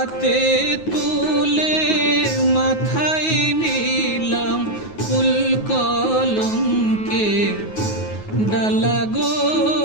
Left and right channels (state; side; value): late; right; 9.4 ms